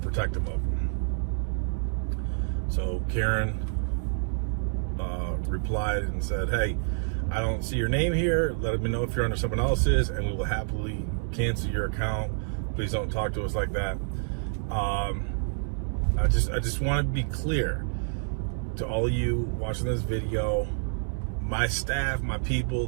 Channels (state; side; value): silent; left; 59 dB below the other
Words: of them. So Karen replied and said, hey, I don't see your name here. Let me know if you're under someone else's, and we will happily cancel your account. Please don't talk to us like that. I just want to be clear to all of you watching this video. My staff, my people,